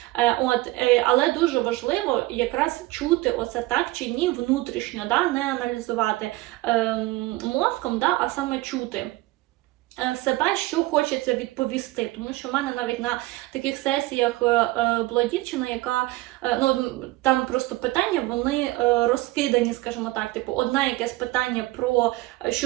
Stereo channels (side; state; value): left; quieter; 19.3 dB